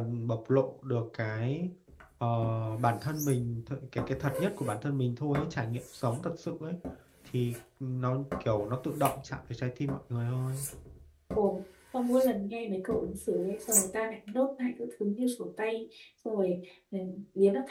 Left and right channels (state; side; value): identical; both; correlation 1.00